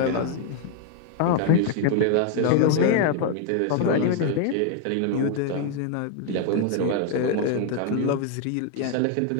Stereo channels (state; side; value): different; both; correlation 0.01